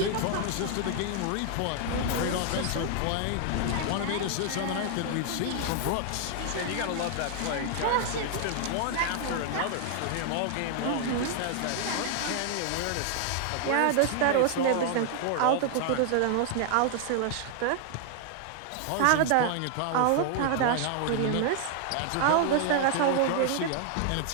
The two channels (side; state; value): both; different; correlation 0.00